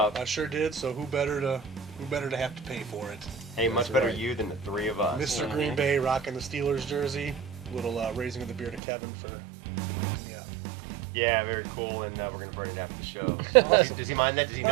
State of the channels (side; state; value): left; drops out; at 8.8 s